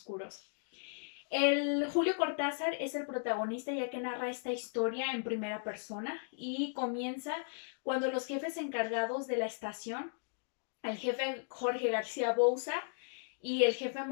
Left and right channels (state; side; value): silent; right; digital silence